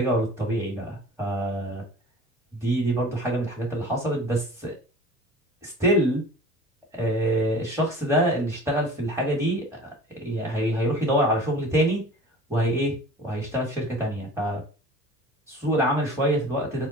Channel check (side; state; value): both; normal; correlation 0.42